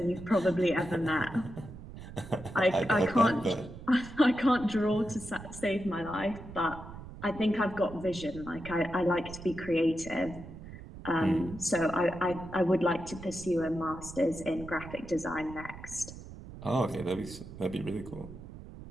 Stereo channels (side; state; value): right; noise; rumble, 14 dB below the sound